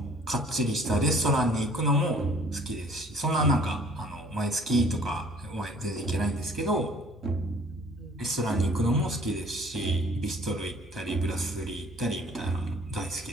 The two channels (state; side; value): normal; both; correlation 0.55